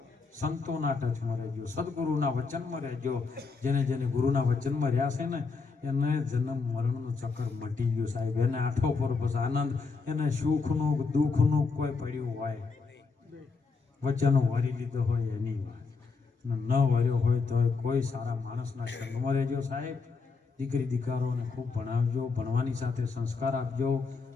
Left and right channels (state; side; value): quieter; right; 4.5 dB